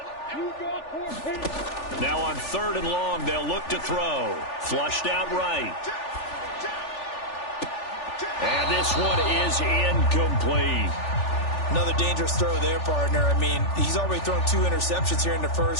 Now on 3rd and long, they'll look to throw. Flushed out right. And this one is incomplete. Another dangerous throw there, partner. I mean, he's already thrown 2 interceptions here in the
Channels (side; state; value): right; late; 3.4 ms